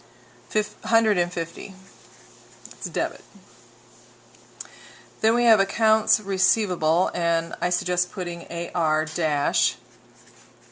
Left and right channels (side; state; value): both; identical; correlation 1.00